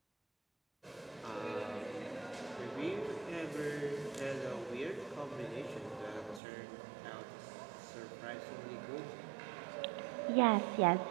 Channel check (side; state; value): left; drops out; at 6.4 s